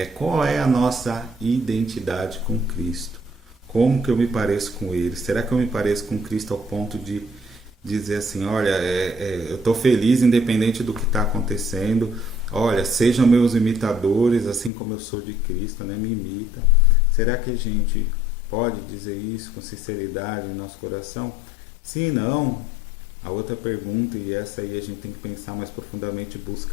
Qual é a nossa identidade com Cristo? Como que eu me pareço com Ele? Será que eu me pareço com Cristo ao ponto de dizer assim, olha, eu estou feliz independente do que está acontecendo, olha, sejam meus imitadores, assim como eu sou de Cristo, né? Me imita. Será que a gente pode dizer isso com sinceridade em nosso coração? Se não, a outra pergunta, e essa aí a gente tem que pensar mais profundamente e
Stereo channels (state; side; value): drops out; right; at 14.7 s